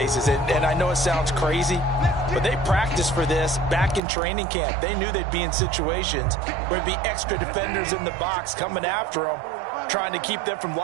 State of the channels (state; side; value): drops out; left; at 4.0 s